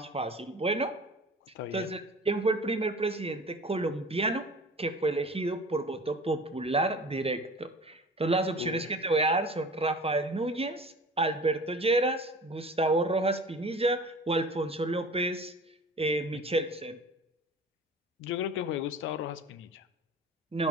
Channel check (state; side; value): normal; both; correlation 0.41